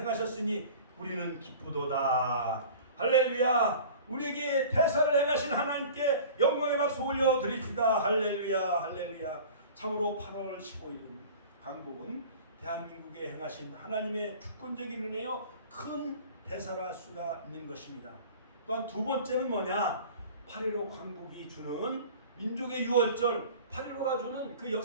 우리는 기쁘도다. 할렐루야. 우리에게 대사를 행하신 하나님께 영광의 박수 올려드립시다. 할렐루야 할렐루야. 참으로 8월 15일은 광복은 대한민국에 행하신 하나님의 주권적인 은혜요 큰 대사라 할 수가 있는 것입니다. 또한 두 번째는 뭐냐? 8.15 광복이 주는 민족의 유월절 8.15가 주는 그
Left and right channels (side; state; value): both; inverted; correlation -0.42